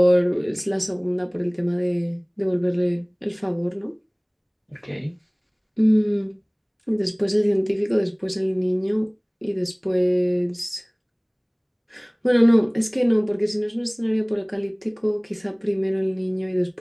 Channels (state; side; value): identical; both; correlation 1.00